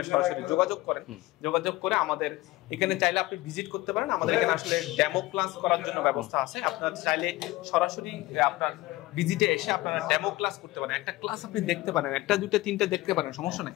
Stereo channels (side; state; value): right; quieter; 18.7 dB